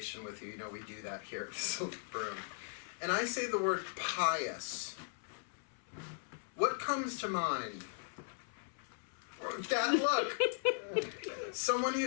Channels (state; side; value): silent; right; 52 dB below the other